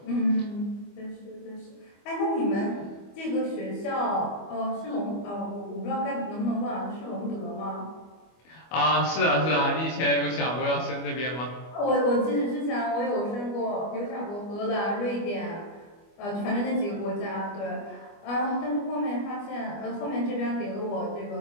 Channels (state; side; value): late; right; 25 ms